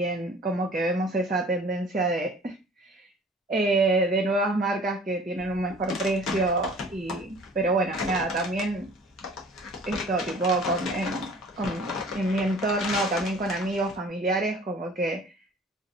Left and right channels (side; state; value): both; normal; correlation 0.48